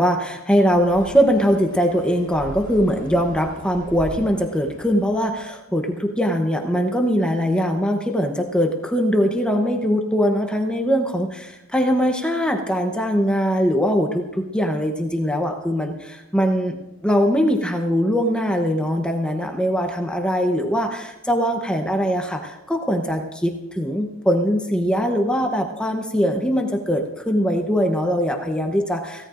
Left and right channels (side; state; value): both; normal; correlation 0.75